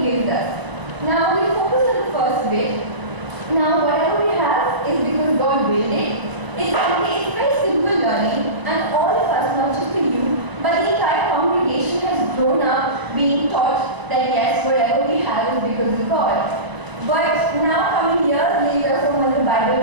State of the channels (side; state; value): left; late; 1.0 ms